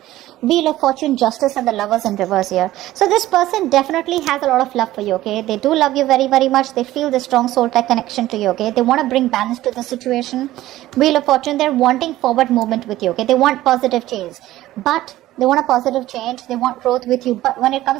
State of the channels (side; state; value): left; quieter; 15.4 dB